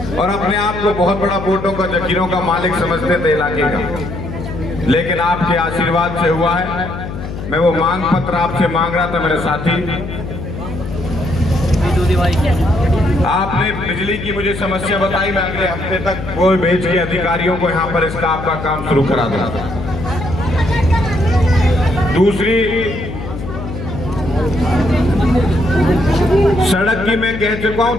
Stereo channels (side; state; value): left; noise; hum, 8 dB below the sound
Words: और अपने आप को बहुत बड़ा वोटों का, जखीरों का मालिक समझते थे इलाके का। लेकिन आपके आशीर्वाद से हुआ है। मैं वो मांग पत्र आपसे मांग रहा था मेरे साथी। आपने बिजली की मुझे समस्या बताई, मैं अगले हफ्ते तक वो भेज के अधिकारियों को यहाँ पर इसका आपका काम शुरू करा दूंगा। दूसरी, सड़क की मैं कह चुका हूं,